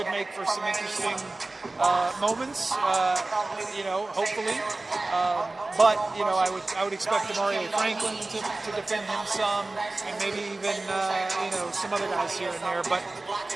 make for some interesting moments, you know, hopefully. But, you know, I would expect Demario Franklin to defend him some, and maybe even, you know, some other guys here and there. But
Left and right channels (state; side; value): quieter; left; 3.0 dB